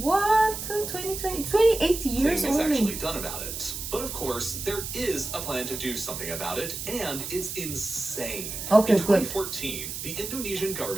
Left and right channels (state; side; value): noise; right; hiss, 7 dB below the sound